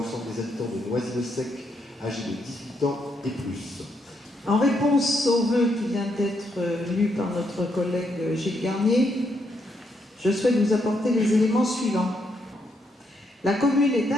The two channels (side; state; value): both; normal; correlation 0.77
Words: des habitants de Noisy-le-Sec âgés de 18 ans et plus. En réponse au vœu qui vient d'être lu par notre collègue Gilles Garnier, je souhaite vous apporter les éléments suivants. La commune est